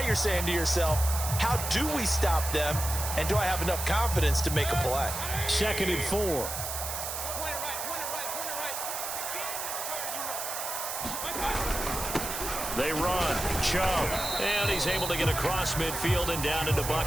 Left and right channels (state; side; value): noise; right; hiss, 4 dB below the sound